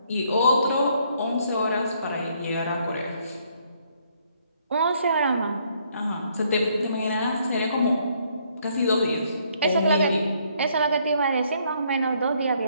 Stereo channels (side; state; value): both; inverted; correlation -0.68